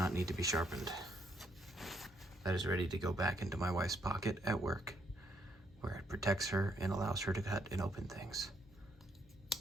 need to be sharpened. That is ready to go back into my wife's pocket at work, where it protects her and allows her to cut and open things.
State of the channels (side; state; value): both; normal; correlation 0.72